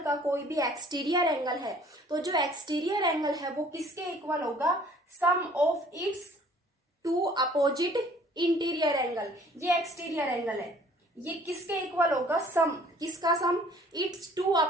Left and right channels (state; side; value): normal; both; correlation 0.55